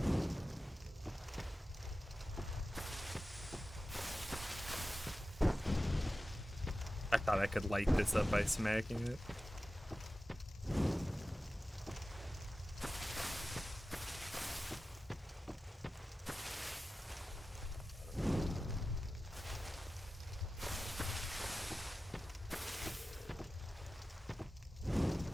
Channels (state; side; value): normal; both; correlation 0.94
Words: I thought I could light this up by smacking it.